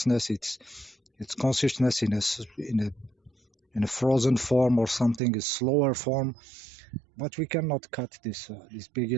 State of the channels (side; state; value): left; drops out; at 5.2 s